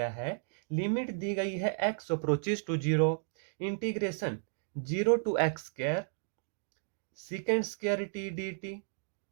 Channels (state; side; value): silent; left; digital silence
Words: है? लिमिट दी गई है x approaches to zero, integration zero to x square second square t d t